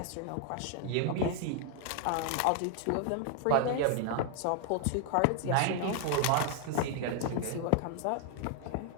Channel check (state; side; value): different; both; correlation 0.00